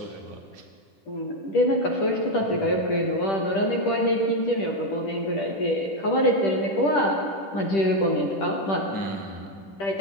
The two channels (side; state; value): right; late; 10 ms